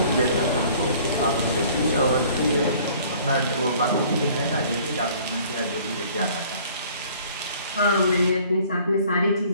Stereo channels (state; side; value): inverted; both; correlation -0.54